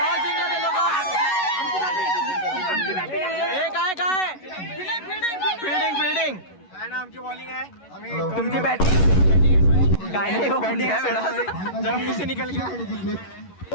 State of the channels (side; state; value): right; late; 11 ms